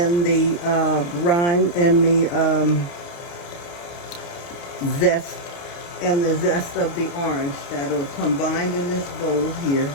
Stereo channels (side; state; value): right; late; 29 ms